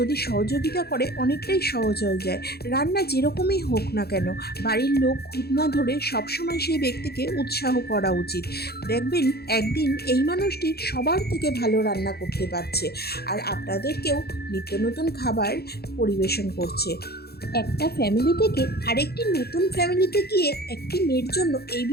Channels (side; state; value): right; late; 0.46 ms